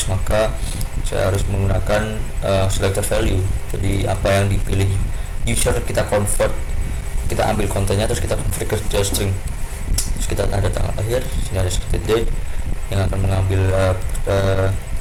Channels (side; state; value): both; identical; correlation 1.00